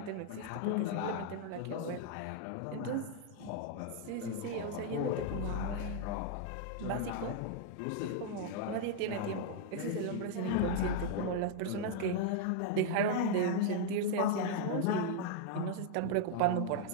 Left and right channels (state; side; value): different; both; correlation 0.00